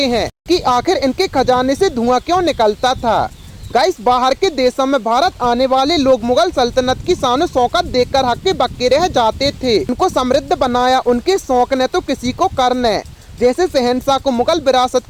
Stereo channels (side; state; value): both; identical; correlation 1.00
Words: हैं कि आखिर इनके खजाने से धुआं क्यों निकलता था। गाइस, बाहर के देशों में भारत आने वाले लोग मुगल सल्तनत की शान शौकत देखकर हक्के बक्के रह जाते थे। उनको समृद्ध बनाया उनके शौक ने तो किसी को कर ने। जैसे शहंशाह को मुगल विरासत